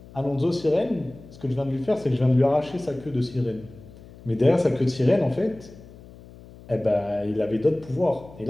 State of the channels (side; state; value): left; noise; hum, 20 dB below the sound